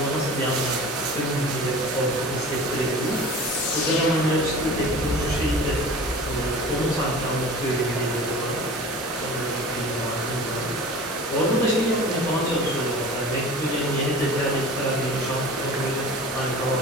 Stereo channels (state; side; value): normal; both; correlation 0.39